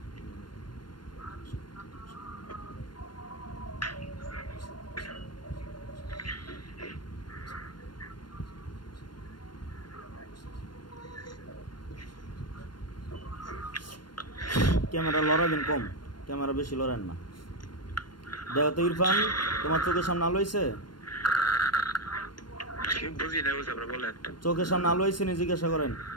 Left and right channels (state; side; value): late; right; 0.72 ms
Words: ক্যামেরা লড়াবেন কম, ক্যামেরা বেশি লড়েন না। দেখো তো ইরফান, তোমার চোখের সামনে আলো হয়েছে? বুঝি না, বুঝে আপনারা বলেন। চোখের সামনে আলো হয়েছে নি জিজ্ঞাসা করেন।